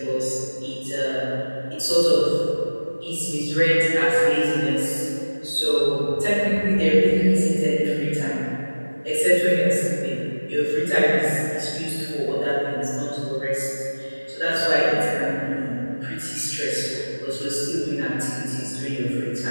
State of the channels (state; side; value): inverted; both; correlation -1.00